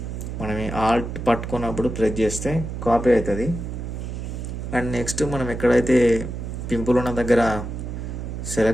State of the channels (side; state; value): right; noise; hum, 6 dB below the sound